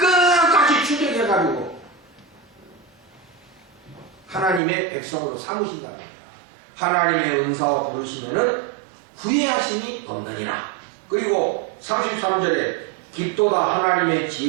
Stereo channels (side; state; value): left; drops out; at 4.6 s